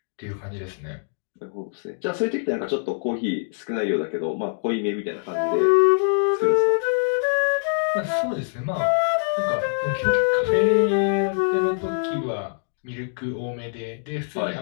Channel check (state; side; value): silent; right; digital silence